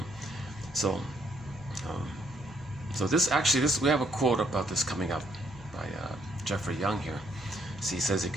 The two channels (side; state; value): left; noise; hum, 21 dB below the sound